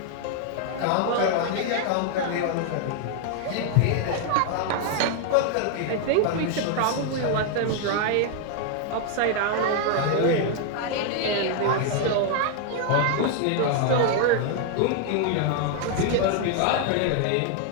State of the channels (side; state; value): both; different; correlation 0.00